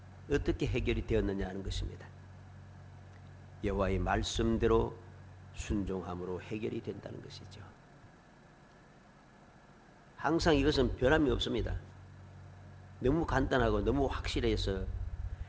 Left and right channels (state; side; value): identical; both; correlation 1.00